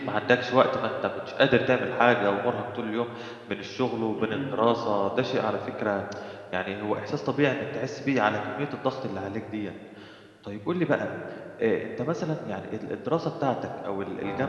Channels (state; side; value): identical; both; correlation 1.00